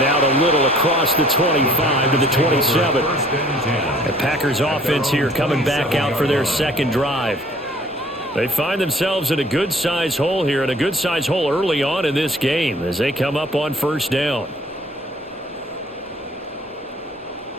out a little across the 25 to the 27. The Packers offense here coming back out for their 2nd drive. They find themselves in a good-sized hole here, and a good-sized hole early on in this game as they come up on 1st down.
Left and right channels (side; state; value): both; normal; correlation 0.55